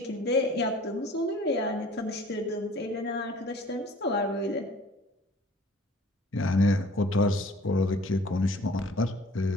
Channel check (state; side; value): normal; both; correlation 0.50